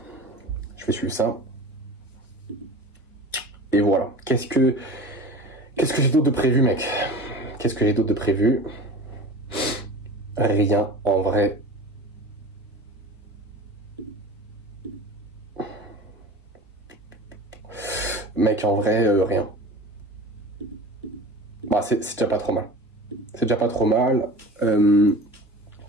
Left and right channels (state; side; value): normal; both; correlation 0.36